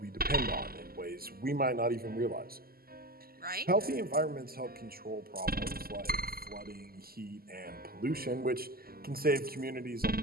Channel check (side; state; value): left; late; 0.43 ms